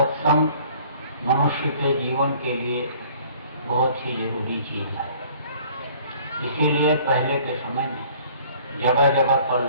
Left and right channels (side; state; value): both; inverted; correlation -0.53